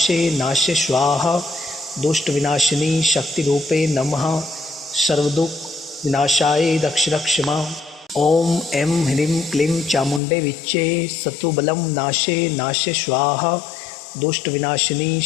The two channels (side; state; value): right; drops out; at 10.2 s